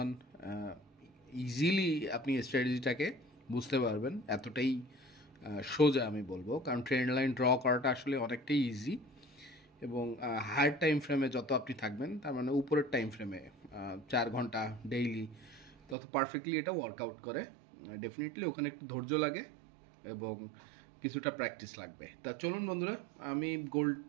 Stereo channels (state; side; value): drops out; left; at 16.0 s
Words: ইজিলি আপনি এই স্ট্র্যাটেজিটাকে বুঝতে পারবেন। এতটাই সোজা আমি বলবো, কারণ ট্রেন্ড লাইন ড্র করাটা আসলে অনেকটাই ইজি এবং হায়ার টাইম ফ্রেমে যত আপনি থাকবেন, তার মানে উপরের টাইম ফ্রেমে 4 ঘন্টা ডেইলি, তত পারফেক্টলি এটা ওয়ার্কআউট করে। ডেফিনেটলি ওখানে একটু ধৈর্য লাগে এবং কিছুটা প্র্যাকটিস লাগবে। তা চলুন বন্ধুরা, আমি গোল্ড